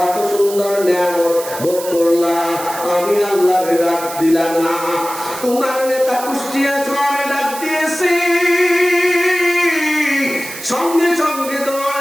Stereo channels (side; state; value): right; noise; hiss, 11 dB below the sound